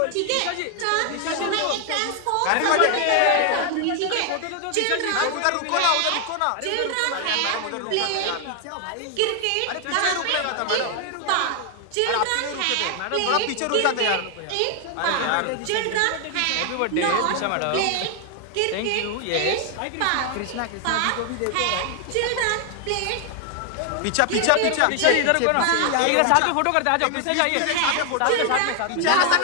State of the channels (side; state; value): both; different; correlation 0.00